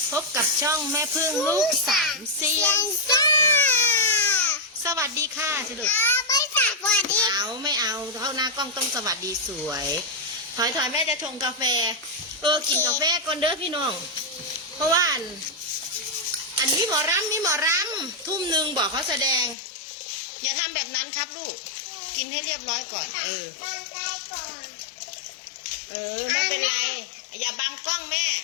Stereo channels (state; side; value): drops out; right; at 19.6 s